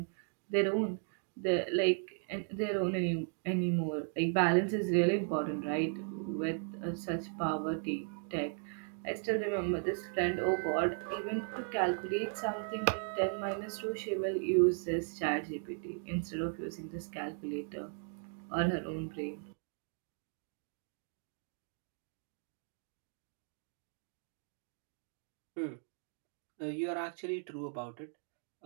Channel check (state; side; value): silent; left; 53 dB below the other